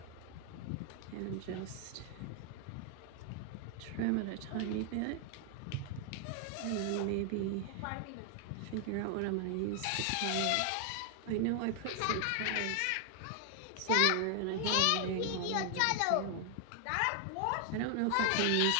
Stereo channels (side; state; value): both; different; correlation 0.00